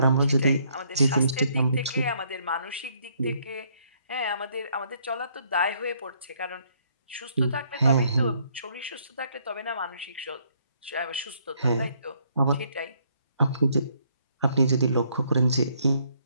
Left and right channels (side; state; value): both; inverted; correlation -0.68